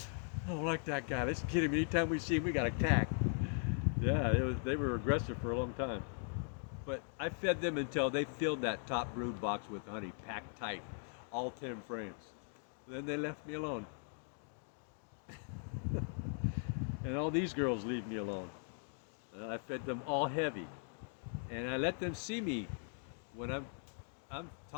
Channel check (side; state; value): right; silent; 51 dB below the other